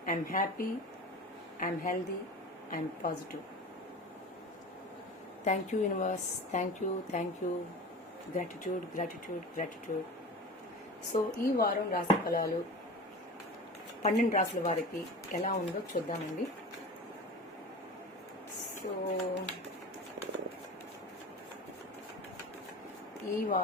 I'm happy, I'm healthy, I'm positive. Thank you universe, thank you, gratitude. So ఈ వారం రాశి ఫలాలు 12 రాశుల వారికి ఎలా ఉందో చూద్దామండి. సో ఈ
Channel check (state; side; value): normal; both; correlation 0.33